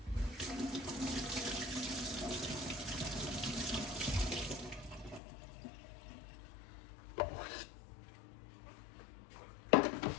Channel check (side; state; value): right; drops out; at 5.2 s